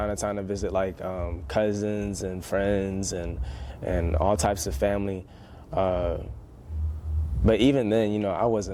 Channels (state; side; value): identical; both; correlation 1.00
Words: to time to visit like cousins and friends and all types of family. But even then, you know, I